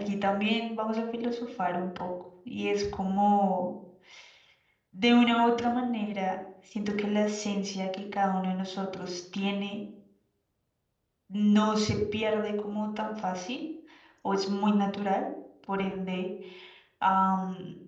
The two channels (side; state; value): both; identical; correlation 1.00